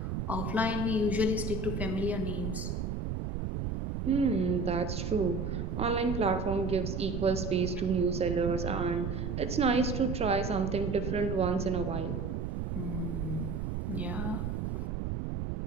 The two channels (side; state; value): right; noise; rumble, 2 dB below the sound